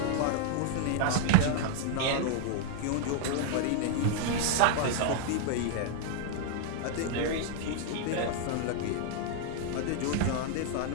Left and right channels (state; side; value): different; both; correlation -0.01